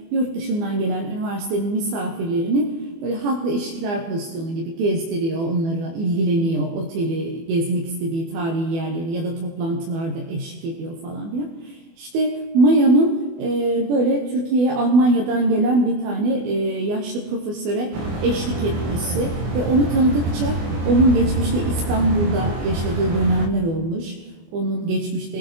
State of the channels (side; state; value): left; late; 24 ms